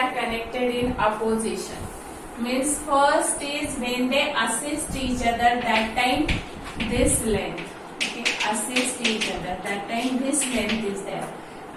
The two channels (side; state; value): both; identical; correlation 1.00